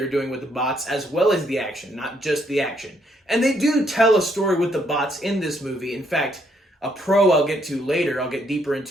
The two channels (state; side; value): normal; both; correlation 0.71